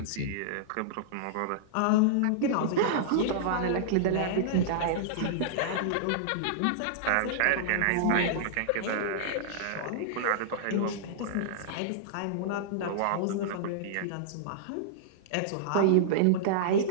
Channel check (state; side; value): different; both; correlation -0.02